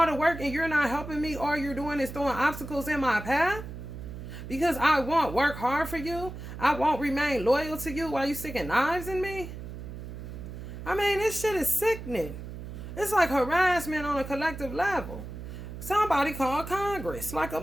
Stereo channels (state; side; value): noise; right; hum, 10 dB below the sound